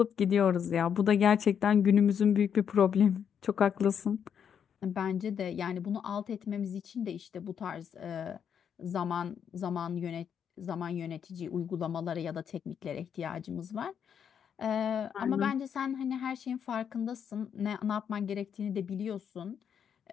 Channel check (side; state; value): right; quieter; 7.9 dB